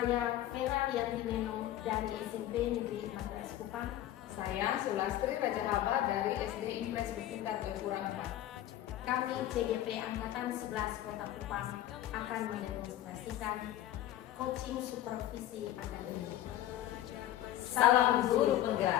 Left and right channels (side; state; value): right; quieter; 13.2 dB